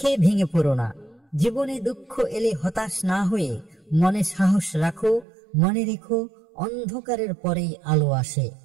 ভেঙে পড়ো না। জীবনে দুঃখ এলে হতাশ না হয়ে মনে সাহস রাখো। মনে রেখো, অন্ধকারের পরেই আলো আসে।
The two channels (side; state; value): left; drops out; at 5.2 s